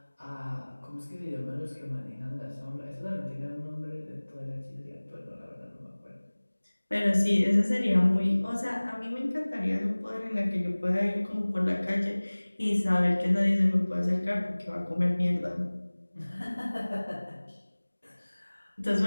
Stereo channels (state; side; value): inverted; both; correlation -1.00